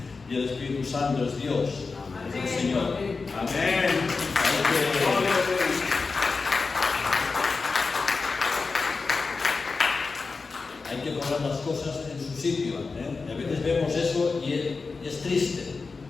y el Espíritu Santo es Dios, es el Señor. Amén. Hay que poner las cosas en su sitio. A veces vemos eso y es triste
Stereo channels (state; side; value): quieter; right; 4.3 dB